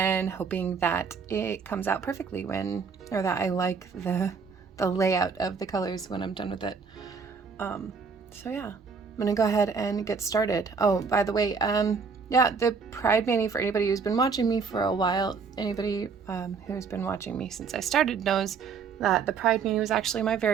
hoping that it comes out perfectly or that I like the layout of the colors when I'm done with it. So yeah, I'm gonna go ahead and get started. Oh, by the way, yeah, the Pride Mani, for anybody who's been watching me for a while, anybody who's been watching me since I started knows that the Pride Mani was actually my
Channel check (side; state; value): left; quieter; 5.5 dB